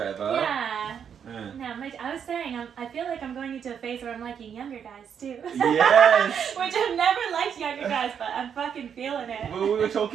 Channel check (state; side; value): quieter; left; 7.8 dB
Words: Yeah. Yeah. No, I was saying, I feel like I'm going into a phase where I'm liking younger guys too. Yes. Which I've never liked younger guys, but I'm fucking feeling it. Well, we were